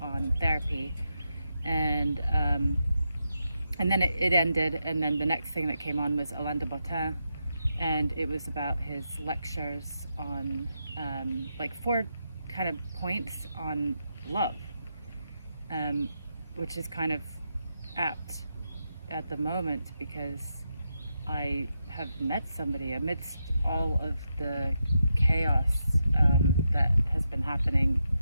on therapy. And then it ended, and then the next thing that came on was Alain de Botton, and it was about his lectures on like 4 kind of points on love, which is kind of apt at the moment because I have met somebody amidst all of the chaos that has been happening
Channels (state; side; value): inverted; both; correlation -0.85